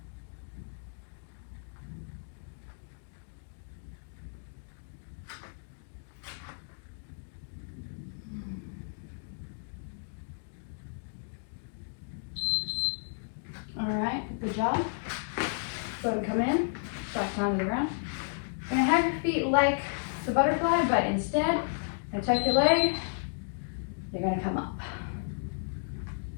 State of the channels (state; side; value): silent; right; digital silence